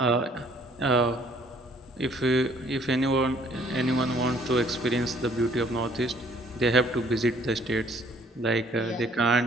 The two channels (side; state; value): both; normal; correlation 0.60